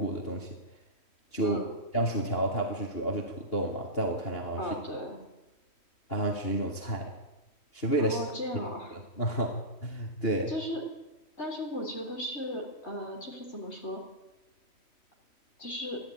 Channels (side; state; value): right; late; 2.9 ms